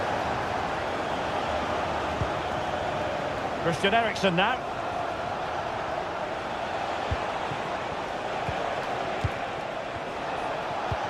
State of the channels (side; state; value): both; identical; correlation 1.00